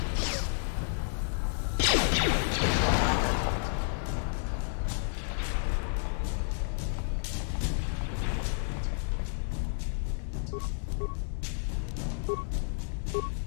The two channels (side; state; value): right; silent; digital silence